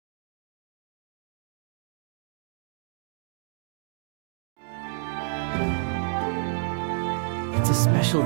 It's a special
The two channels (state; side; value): silent; left; digital silence